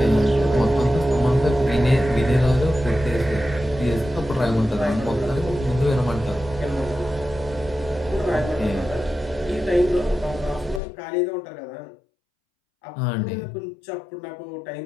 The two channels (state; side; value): drops out; right; at 10.8 s